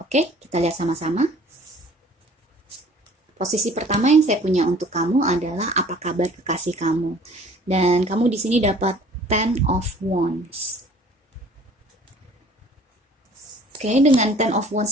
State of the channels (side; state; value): both; normal; correlation 0.51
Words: kita lihat sama-sama. Posisi pertama yang saya punya untuk kamu adalah apa kabar kekasih kamu. Dan kamu di sini dapat Ten of Wands. Oke, dengan Ten of